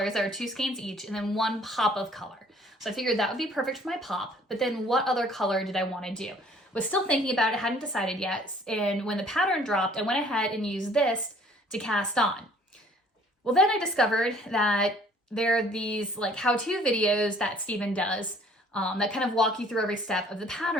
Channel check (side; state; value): both; normal; correlation 0.56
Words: that are 2 skeins each and then 1 pop of color. So I figured that would be perfect for my pop, but then what other color did I want to do? Was still thinking about it, hadn't decided yet. And when the pattern dropped, I went ahead and used this to cast on. Well, then I discovered that there are these like how-to videos that Stephen does that kind of walk you through every step of the